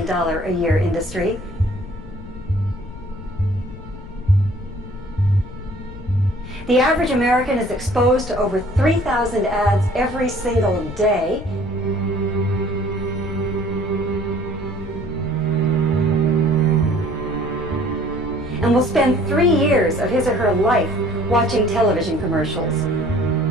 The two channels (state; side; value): noise; left; rumble, 13 dB below the sound